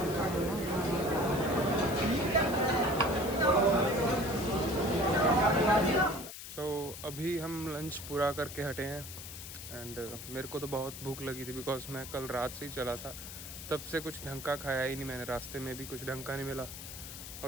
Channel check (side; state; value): left; noise; hiss, 11 dB below the sound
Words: अभी हम लंच पूरा करके हटे हैं। एंड मेरे को तो बहुत भूख लगी थी, बिकॉज मैं कल रात से ही चला था, तब से कुछ ढंग का खाया ही नहीं मैंने। रास्ते में भी कुछ ढंग का नहीं मिला